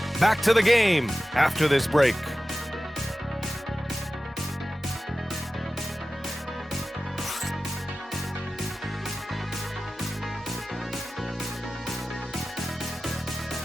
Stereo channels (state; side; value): normal; both; correlation 0.95